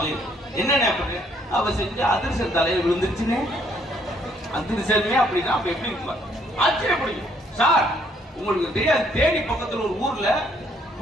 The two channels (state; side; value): normal; both; correlation 0.67